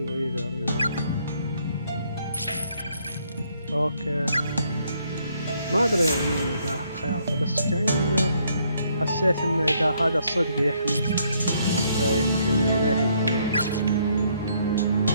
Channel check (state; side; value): inverted; both; correlation -0.70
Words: either, you know. Okay. ما أدري يعني إذا خيارته، بس كأن حسيت إن إذا هذا الصدق يحمي فيمكن إليه يكون أفضل.